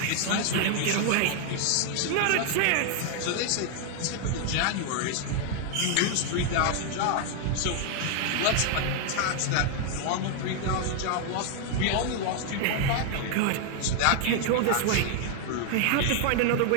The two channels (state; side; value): different; both; correlation 0.00